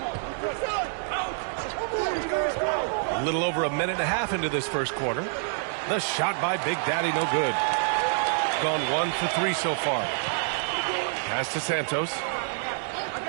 A little over a minute and a half into this first quarter. The shot by Big Daddy, no good. Gone 1 for 3 so far. Pass to Santos.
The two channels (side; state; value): left; silent; 60 dB below the other